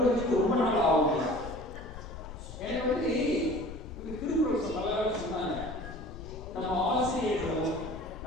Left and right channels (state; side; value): noise; left; rumble, 12 dB below the sound